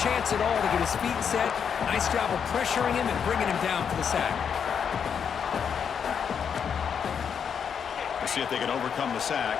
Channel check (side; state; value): right; quieter; 7.3 dB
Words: at all to get his feet set. Nice job of pressuring him and bringing him down for the sack. We'll see if they can overcome the sack.